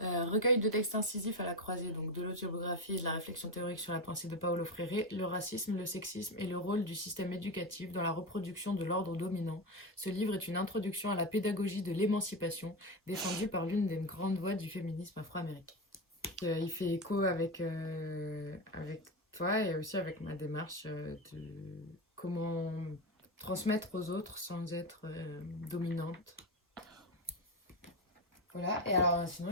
Recueil de textes incisifs à la croisée donc de l'autobiographie et de la réflexion théorique sur la pensée de Paulo Freire, le racisme, le sexisme et le rôle du système éducatif dans la reproduction de l'ordre dominant. Ce livre est une introduction à la pédagogie de l'émancipation, défendue par l'une des grandes voix du féminisme afro-américain. Il fait écho avec toi et aussi avec ma démarche de comment transmettre aux autres sans être dominante. Voilà, et alors sinon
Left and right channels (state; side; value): normal; both; correlation 0.15